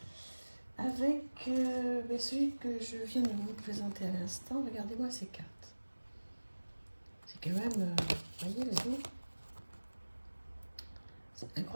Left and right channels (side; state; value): both; inverted; correlation -1.00